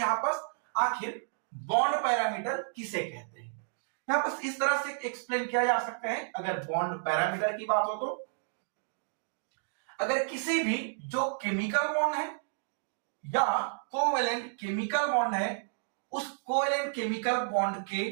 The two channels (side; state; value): left; silent; digital silence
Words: पास आखिर बॉन्ड पैरामीटर किसे कहते हैं। यहां पास इस तरह से एक्सप्लेन किया जा सकता है, अगर बॉन्ड पैरामीटर की बात हो तो अगर किसी भी जो केमिकल बॉन्ड है या कोवेलेंट केमिकल बॉन्ड है, उस कोवेलेंट केमिकल बॉन्ड